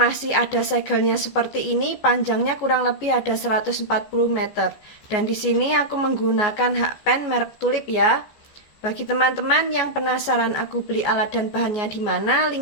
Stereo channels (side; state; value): right; late; 14 ms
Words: ada segelnya seperti ini, panjangnya kurang lebih ada 140 meter. Dan di sini aku menggunakan hakpen merek Tulip ya. Bagi teman-teman yang penasaran aku beli alat dan bahannya di mana,